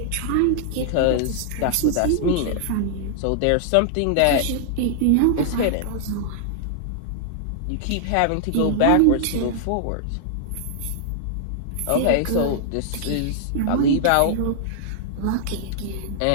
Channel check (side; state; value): both; different; correlation -0.01